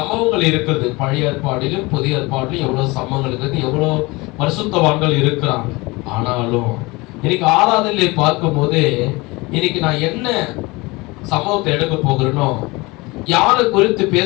இருக்கிறது. பழைய ஏற்பாடிலும் புதிய ஏற்பாடிலும் எவ்வளவு சம்பவங்கள் இருக்கிறது, எவ்வளவு பரிசுத்தவான்கள் இருக்கிறாங்க. ஆனாலும் இன்னைக்கு ஆராதனையை பார்க்கும் போது இன்னைக்கு நான் என்ன சம்பவத்தை எடுக்க போகிறேனோ, யாரை குறித்து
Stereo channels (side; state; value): right; quieter; 23.7 dB